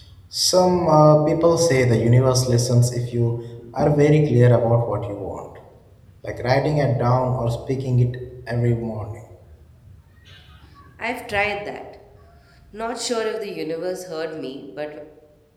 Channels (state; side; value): identical; both; correlation 1.00